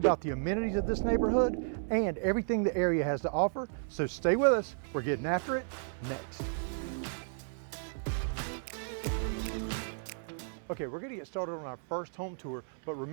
the amenities of this neighborhood and everything the area has to offer. So stay with us, we're getting after it next. Okay, we're gonna get started on our first home tour, but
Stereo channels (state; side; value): silent; left; 56 dB below the other